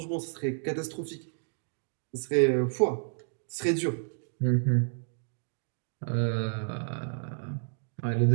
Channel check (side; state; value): left; silent; digital silence